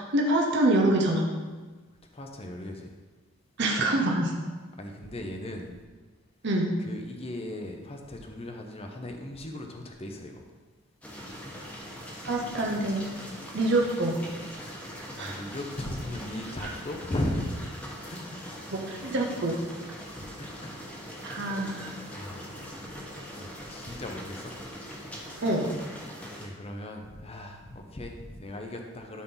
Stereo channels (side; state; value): both; normal; correlation 0.50